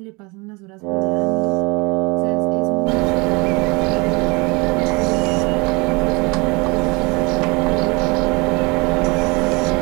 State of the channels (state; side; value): quieter; left; 27.1 dB